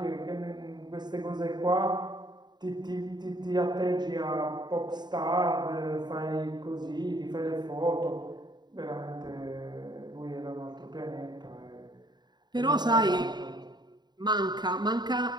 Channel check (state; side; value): late; left; 0.21 ms